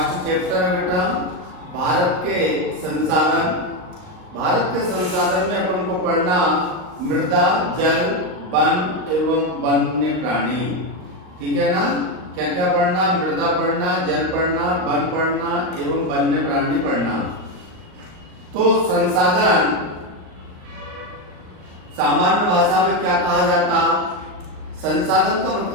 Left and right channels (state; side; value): late; left; 38 ms